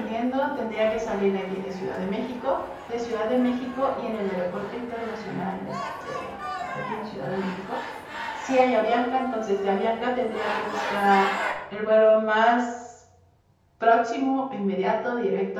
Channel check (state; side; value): identical; both; correlation 1.00